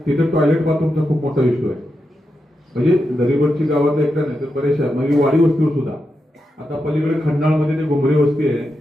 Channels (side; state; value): both; normal; correlation 0.87